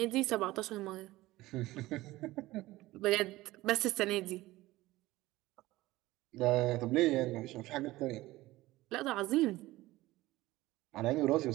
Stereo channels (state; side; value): quieter; left; 18.1 dB